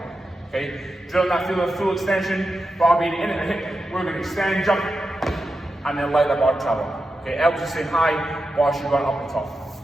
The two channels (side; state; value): both; normal; correlation 0.90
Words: Okay? Drilling that feel of full extension, bar being in at the hip, we're going to extend, jump, and then let that bar travel. Okay? Elbows are staying high, bar should run up the top.